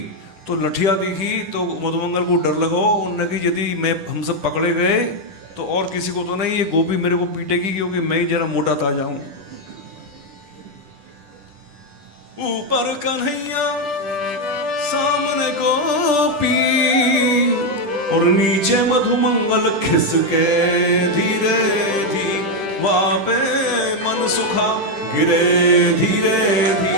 तो लठिया दिखी तो मधुमंगल को डर लगा। उन्होंने कि यदि मैं हम सब पकड़े गए तो और किसी को तो नहीं, ये गोपी मेरे को पीटेगी, क्योंकि मैं ही जरा मोटा ताजा हूं। ऊपर कन्हैया सामने गोपी, और नीचे मधुमंगल खिसके धीरे धीरे, वापे मन सुखा गिरे धीरे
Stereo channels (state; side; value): late; left; 10 ms